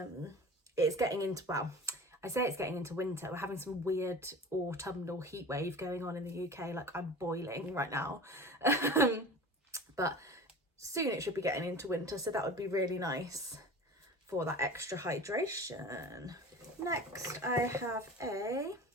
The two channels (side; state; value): both; normal; correlation 0.37